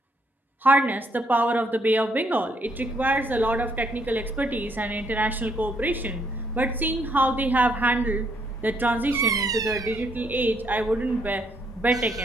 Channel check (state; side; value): normal; both; correlation 0.71